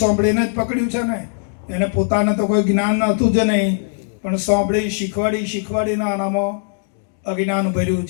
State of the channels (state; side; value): silent; right; digital silence